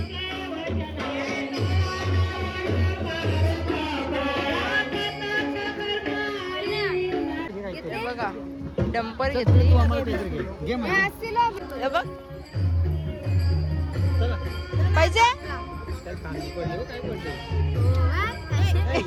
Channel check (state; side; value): identical; both; correlation 1.00